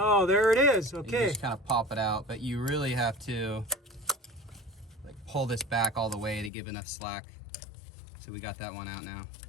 there it is. Okay. You just kind of pop it out, but you really have to like pull this back all the way to give enough slack. So we got that one out now.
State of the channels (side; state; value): right; drops out; at 6.5 s